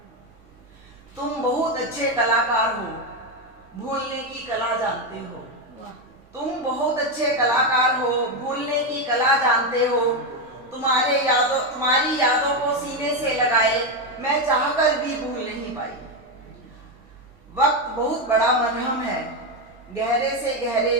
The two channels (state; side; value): normal; both; correlation 0.08